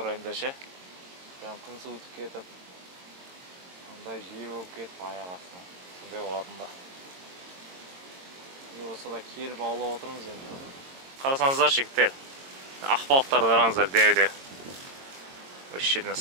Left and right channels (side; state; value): left; late; 22 ms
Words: райында ше. Прям күн суытып кетіп. Андай жел болып кетіп аяқ астына. Сондай болатын да. Не болса да келіп аулап отырмыз енді. Қарасаңыздар жігіттер. Ақбалықтарды қараңыздар деу-деу. Осы жерден